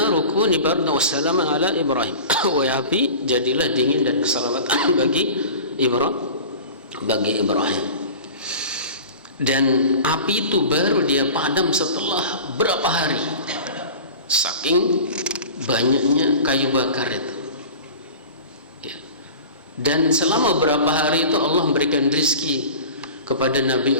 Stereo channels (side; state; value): both; inverted; correlation -0.37